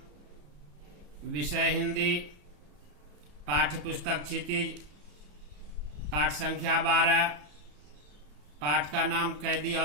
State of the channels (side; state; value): left; late; 34 ms